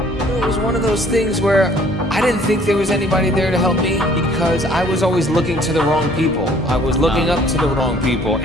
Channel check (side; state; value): both; normal; correlation 0.57